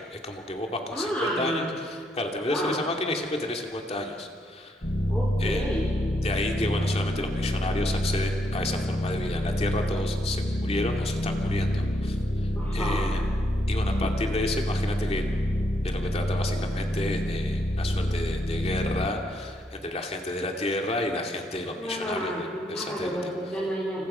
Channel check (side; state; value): both; normal; correlation 0.76